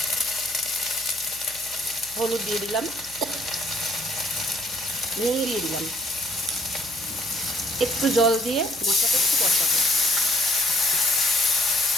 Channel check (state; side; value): noise; right; hum, 22 dB below the sound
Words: হলুদ দিয়ে দিলাম, নুন দিয়ে দিলাম, একটু জল দিয়ে মশলাটা একটু কষাবো।